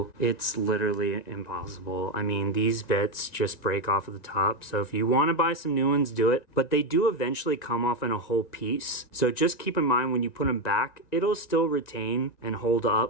It's literally impossible. I mean, these bits just break off at the top. So if you want to buy some new ones, do it. But they do eventually come off in a whole piece. So just keep in mind when you put them back, it'll still retain and hold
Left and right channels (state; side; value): late; right; 1.9 ms